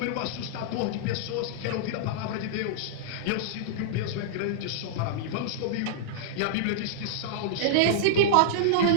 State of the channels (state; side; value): different; both; correlation -0.02